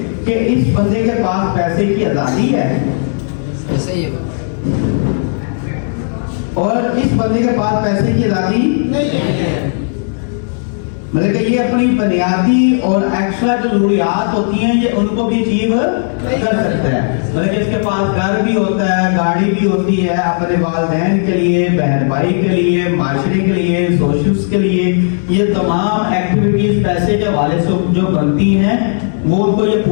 कि इस बंदे के पास पैसे की आजादी है, ऐसे ही है। और इस बंदे के पास पैसे की आजादी नहीं है। मतलब कि ये अपनी बुनियादी और एक्स्ट्रा जो जरूरियात होती हैं ये उनको भी अचीव कर सकता है। मतलब कि इसके पास घर भी होता है, गाड़ी भी होती है, अपने वालिदैन के लिए, बहन भाई के लिए, माशरे के लिए, सोशल्स के लिए, ये तमाम एक्टिविटीज पैसे के हवाले से जो बनती हैं वो उनको ये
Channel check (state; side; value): silent; right; digital silence